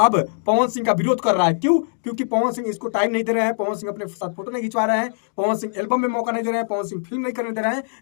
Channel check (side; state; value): right; silent; digital silence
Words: पवन सिंह का विरोध कर रहा है। क्यों? क्योंकि पवन सिंह इसको टाइम नहीं दे रहे हैं, पवन सिंह अपने साथ फोटो नहीं खिंचवा रहे हैं, पवन सिंह एल्बम में मौका नहीं दे रहे हैं, पवन सिंह फिल्म नहीं करने दे रहे हैं,